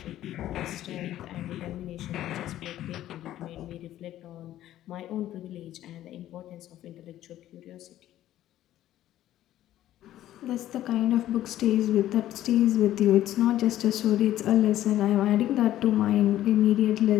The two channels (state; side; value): quieter; right; 13.2 dB